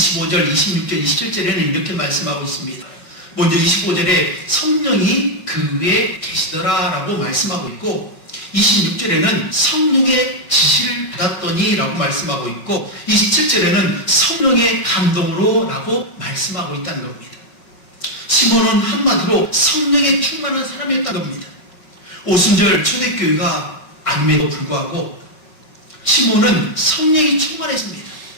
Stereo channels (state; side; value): late; right; 5.4 ms